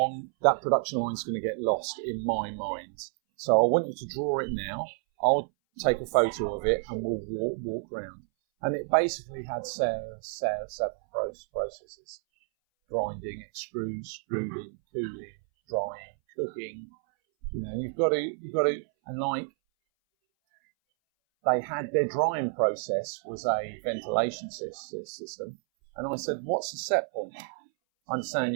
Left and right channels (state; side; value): silent; left; 58 dB below the other